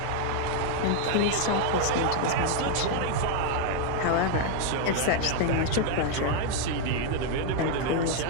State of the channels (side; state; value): both; different; correlation 0.00